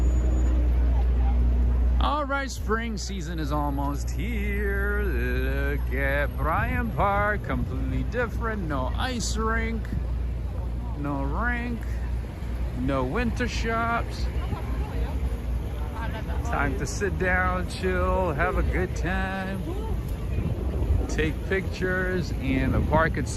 All right, spring season is almost here. Look at Bryant Park, completely different. No ice rink, no winter shops. Time to sit down, chill, have a good time, take pictures, and the park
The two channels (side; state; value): both; identical; correlation 1.00